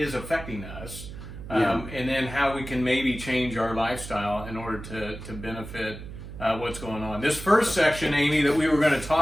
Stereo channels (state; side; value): noise; right; hum, 12 dB below the sound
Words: affecting us, and then how we can maybe change our lifestyle in order to benefit what's going on. This first section, Amy, that we were going to